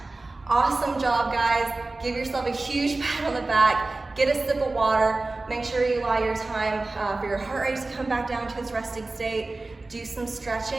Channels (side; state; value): left; quieter; 3.2 dB